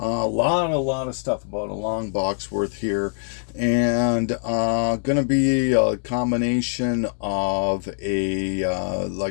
lot of stuff about a long box worth here, and gonna be a combination of a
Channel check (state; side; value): silent; right; digital silence